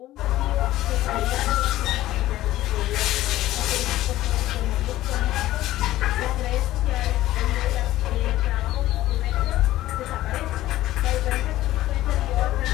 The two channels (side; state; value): right; quieter; 15.3 dB